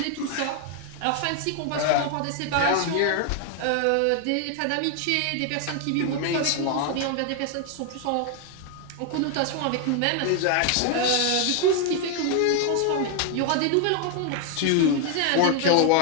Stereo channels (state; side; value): different; both; correlation 0.00